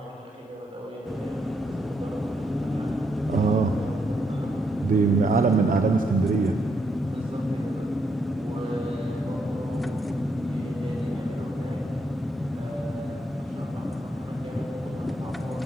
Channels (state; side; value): normal; both; correlation 0.77